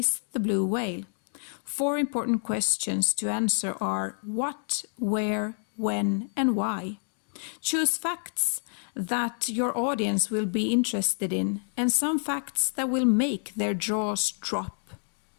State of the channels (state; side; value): silent; right; 59 dB below the other